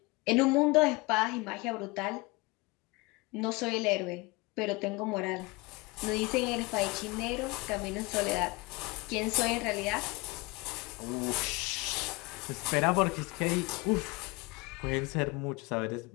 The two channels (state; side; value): quieter; right; 25.1 dB